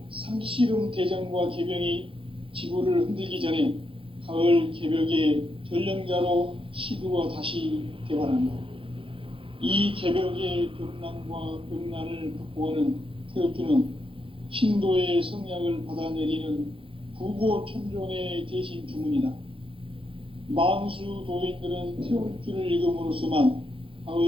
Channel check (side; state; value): left; late; 0.25 ms